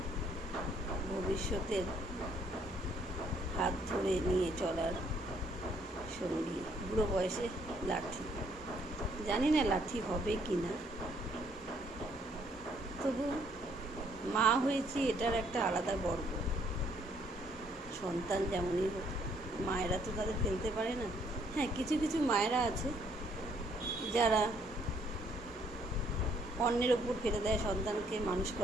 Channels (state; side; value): normal; both; correlation 0.66